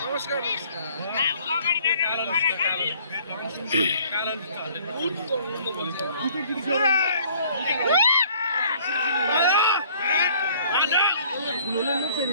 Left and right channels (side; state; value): both; inverted; correlation -0.57